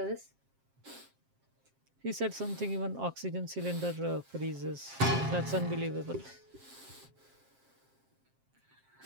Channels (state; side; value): late; left; 7.5 ms